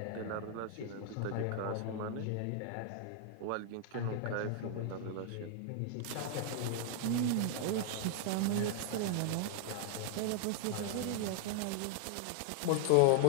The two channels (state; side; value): different; both; correlation -0.01